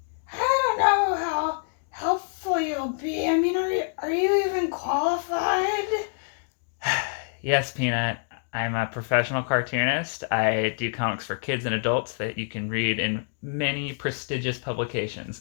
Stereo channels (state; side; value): silent; right; digital silence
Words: I don't know how helpful you'll be. I mean, are you even qualified? Yes, Peanut, I'm a professional cartoonist. I do comics for kids and adults that you can read in many prestigious publications.